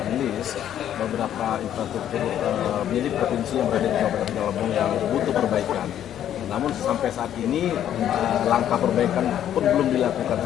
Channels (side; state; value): right; quieter; 10.7 dB